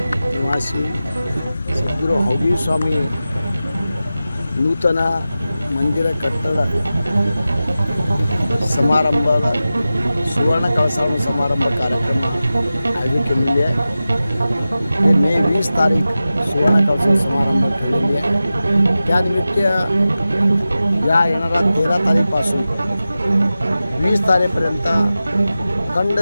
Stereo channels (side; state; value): both; inverted; correlation -0.94